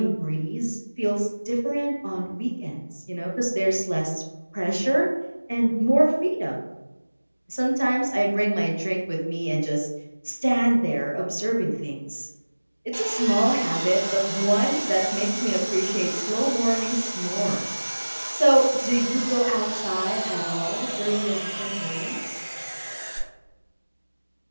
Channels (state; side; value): inverted; both; correlation -1.00